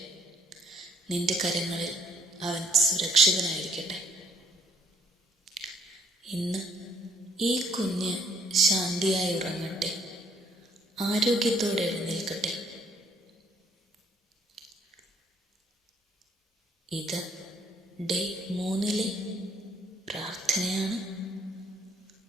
നിന്റെ കരങ്ങളിൽ അവൻ സുരക്ഷിതനായിരിക്കട്ടെ. ഇന്ന് ഈ കുഞ്ഞ് ശാന്തിയായി ഉറങ്ങട്ടെ, ആരോഗ്യത്തോടെ എഴുന്നേൽക്കട്ടെ. ഇത് ഡേ 3 പ്രാർത്ഥനയാണ്.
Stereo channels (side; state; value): both; normal; correlation 0.65